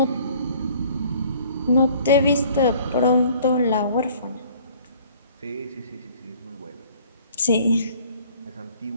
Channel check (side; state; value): both; inverted; correlation -0.54